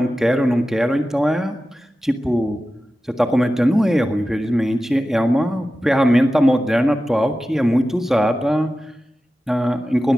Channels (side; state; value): both; normal; correlation 0.94